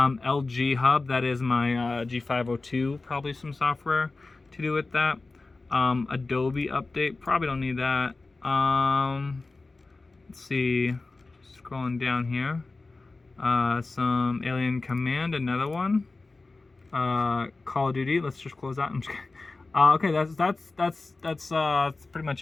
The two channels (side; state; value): right; quieter; 3.5 dB